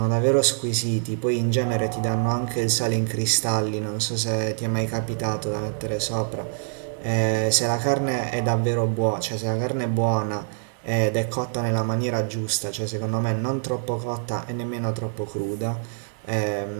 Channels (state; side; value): silent; left; digital silence